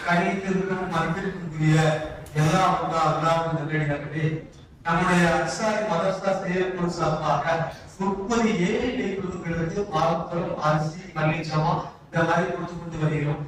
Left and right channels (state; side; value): identical; both; correlation 1.00